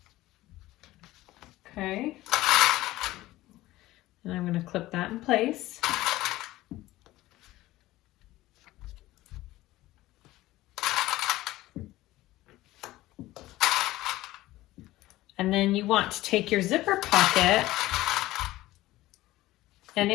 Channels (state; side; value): quieter; right; 17.0 dB